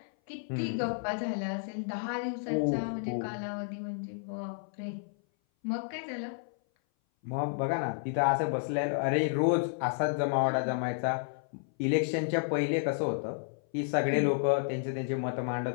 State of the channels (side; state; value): right; silent; 57 dB below the other